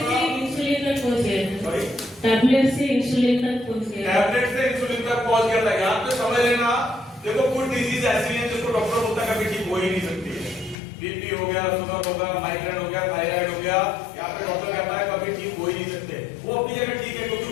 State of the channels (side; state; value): right; drops out; at 10.8 s